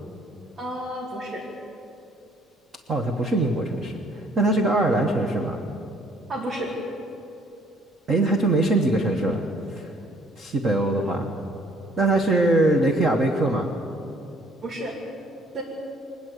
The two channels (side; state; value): both; normal; correlation 0.61